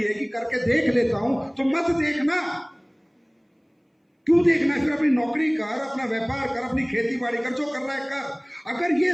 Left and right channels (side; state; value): both; identical; correlation 1.00